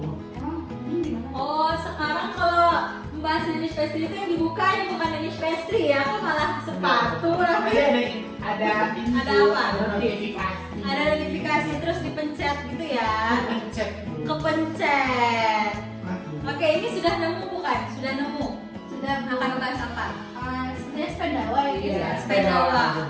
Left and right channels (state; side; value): identical; both; correlation 1.00